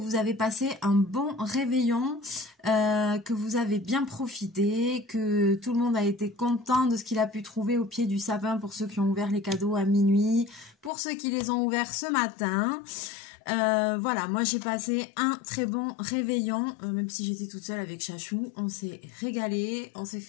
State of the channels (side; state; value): right; drops out; at 10.9 s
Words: avez passé un bon réveillon, que vous avez bien profité, que tout le monde a été content de ce qu'il a pu trouver au pied du sapin pour ceux qui ont ouvert les cadeaux à minuit, pour ceux qui les ont ouverts ce matin. Voilà, moi j'ai passé un très bon réveillon, même si j'étais toute seule avec Chachou. On s'est régalé, on s'est